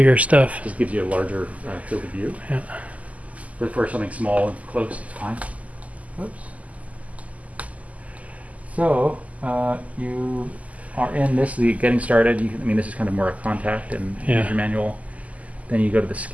stuff. Just gives you a larger field of view. Yeah. But for something small and close, it's fine. Oops. So you are in this, getting started. This is kind of more a contact and user manual. Then you go to the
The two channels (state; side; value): late; left; 0.072 ms